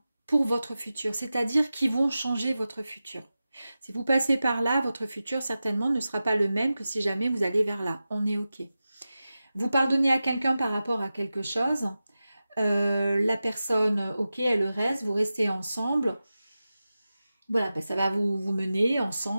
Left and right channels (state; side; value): inverted; both; correlation -0.94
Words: pour votre futur, c'est-à-dire qui vont changer votre futur. Si vous passez par là, votre futur certainement ne sera pas le même que si jamais vous allez vers là. On est OK. Vous pardonnez à quelqu'un par rapport à quelque chose. La personne, OK, elle reste, vous restez ensemble. Voilà, ben ça va vous mener